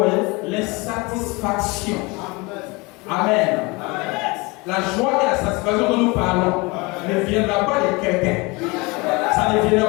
l'insatisfaction. Amen. La joie et la satisfaction dont nous parlons ne viendra pas de quelqu'un. Ça ne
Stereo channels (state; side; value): quieter; right; 25.8 dB